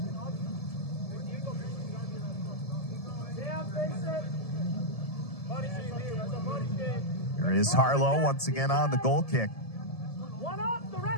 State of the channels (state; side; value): late; right; 1.7 ms